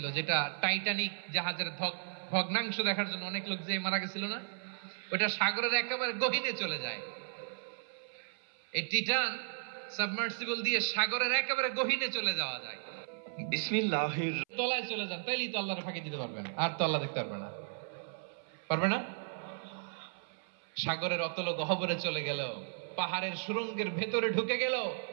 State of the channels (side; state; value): left; silent; 54 dB below the other